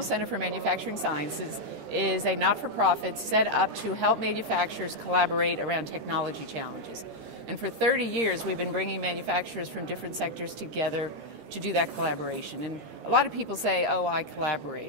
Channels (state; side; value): late; left; 14 ms